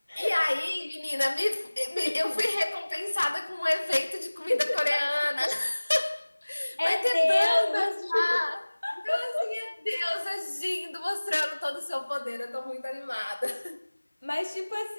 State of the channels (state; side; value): inverted; both; correlation -1.00